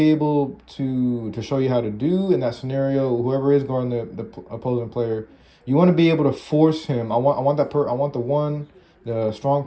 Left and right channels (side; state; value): both; identical; correlation 1.00